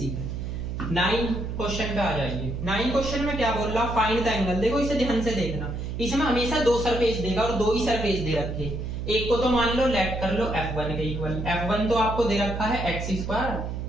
है। 9 क्वेश्चन पे आ जाइए। 9 क्वेश्चन में क्या बोल रहा, फाइंड द एंगल। देखो इसे ध्यान से देखना, इसमें हमेशा 2 सरफेस देगा और 2 ही सरफेस दे रखे। एक को तो मान लो लेट कर लो f1 के इक्वल। f1 तो आपको दे रखा है x²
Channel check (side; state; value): right; noise; hum, 5 dB below the sound